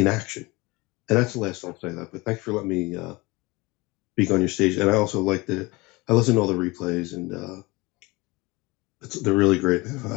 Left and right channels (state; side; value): quieter; right; 23.9 dB